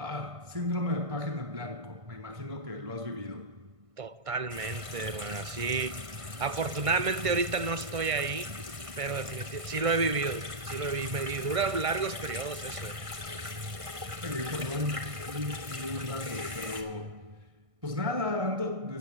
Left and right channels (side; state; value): left; late; 1.6 ms